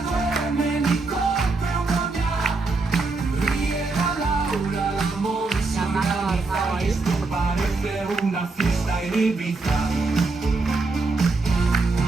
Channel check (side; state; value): left; quieter; 3.7 dB